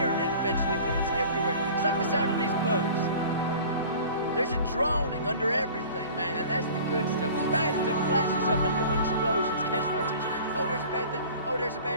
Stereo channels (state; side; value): inverted; both; correlation -0.43